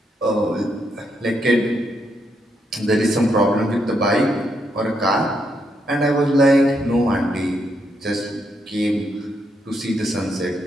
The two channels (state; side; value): normal; both; correlation 0.78